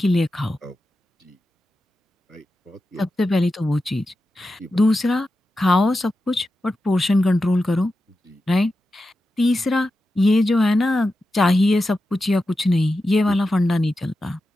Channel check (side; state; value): both; normal; correlation 0.91